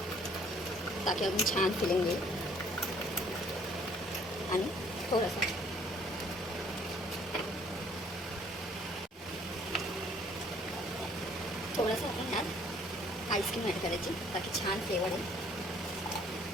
ताकी अजून छान फिलिंग येईल. आणि थोडंसं आपण ह्यात आईस्क्रीम ॲड करायची ताकी छान फ्लेवर येईल.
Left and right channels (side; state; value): both; normal; correlation 0.60